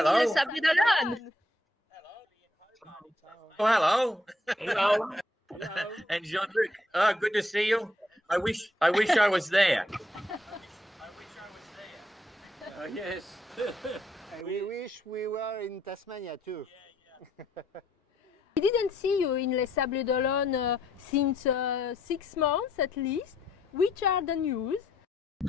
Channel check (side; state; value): both; normal; correlation 0.72